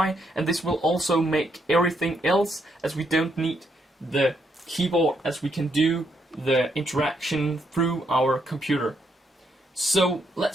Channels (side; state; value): both; normal; correlation 0.76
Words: And this will also make everything else, as we don't need the keyboard, as we can do the interaction through our computer. So